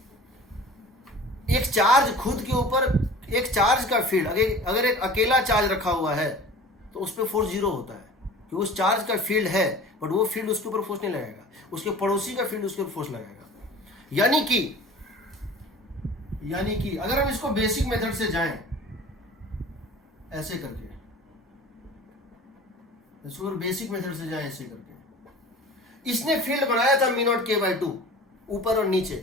एक चार्ज खुद के ऊपर, एक चार्ज का फील्ड अगर एक अकेला चार्ज रखा हुआ है तो उस पर फोर्स 0 होता है, कि उस चार्ज का फील्ड है बट वो फील्ड उसके ऊपर फोर्स नहीं लगाएगा, उसके पड़ोसी का फील्ड उसके ऊपर फोर्स लगाएगा। यानी कि अगर हम इसको बेसिक मेथड से जाएं ऐसे करके, इसको बेसिक मेथड से जाएं ऐसे करके, इसने फील्ड बनाया था μ0 k/2 ऊपर और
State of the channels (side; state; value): both; normal; correlation 0.41